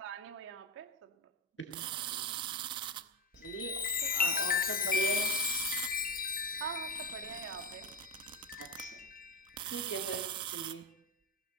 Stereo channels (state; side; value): normal; both; correlation 0.16